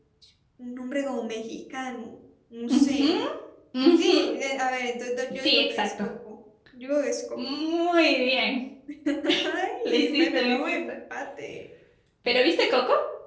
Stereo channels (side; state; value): both; identical; correlation 1.00